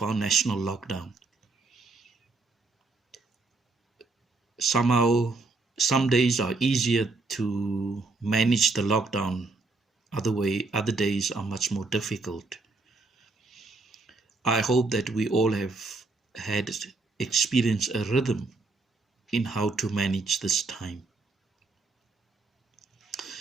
our national lockdown. Somehow, some days are easier to manage the lockdown. Other days are much more difficult. I hope that we all have had experienced a rhythm in how to manage this time.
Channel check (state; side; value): quieter; left; 3.6 dB